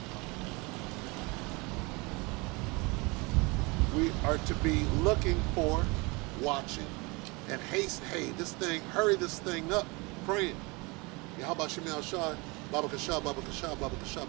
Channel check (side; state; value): left; quieter; 26.8 dB